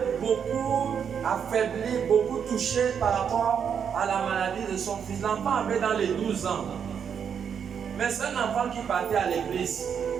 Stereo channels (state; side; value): quieter; left; 7.5 dB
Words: beaucoup affaiblie, beaucoup touchée par rapport à la maladie de son fils. L'enfant avait dans les 12 ans. Mais c'est un enfant qui partait à l'église.